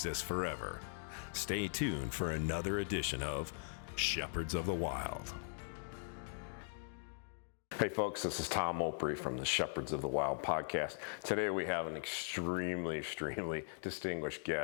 forever. Stay tuned for another edition of Shepherds of the Wild. Hey folks, this is Tom Opre from the Shepherds of the Wild podcast. Today we have an extremely distinguished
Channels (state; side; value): silent; right; digital silence